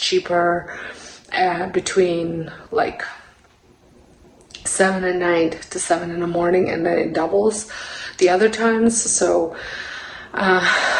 between like 7 at night to 7 in the morning, and then it doubles the other times. So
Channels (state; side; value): identical; both; correlation 1.00